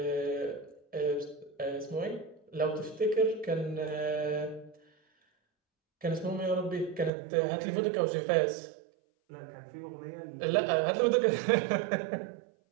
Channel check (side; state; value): left; drops out; at 7.1 s